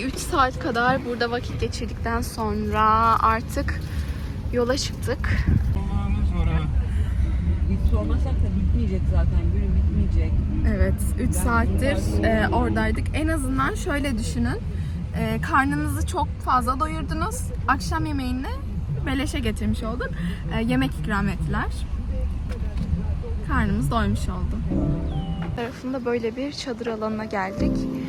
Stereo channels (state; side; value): identical; both; correlation 1.00